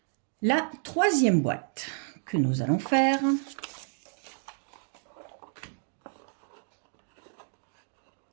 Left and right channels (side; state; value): left; silent; 57 dB below the other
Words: La troisième boîte que nous allons faire.